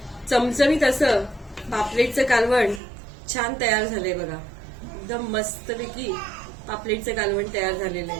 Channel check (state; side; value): drops out; left; at 2.8 s